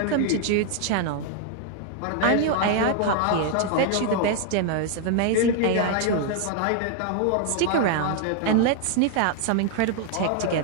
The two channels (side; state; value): both; different; correlation 0.00